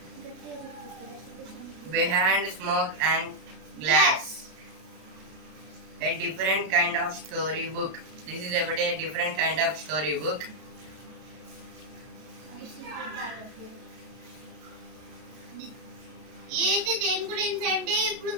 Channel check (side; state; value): left; late; 32 ms